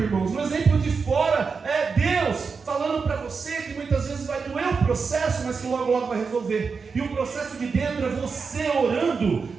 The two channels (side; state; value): left; quieter; 5.1 dB